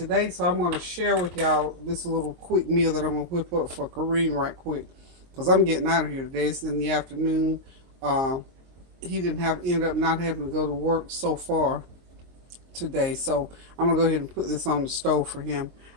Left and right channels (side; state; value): left; late; 22 ms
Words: So I'm going to share with y'all this little quick meal that I'm going to whip up for Kerrem right quick. Because I'm getting out of here today. It's in the afternoon. He ended up not having to go to work so far today. So I'm going to go ahead and put this on the stove for him.